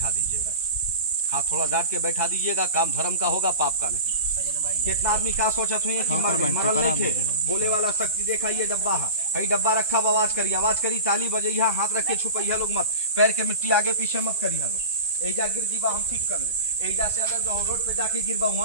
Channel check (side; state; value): both; inverted; correlation -0.34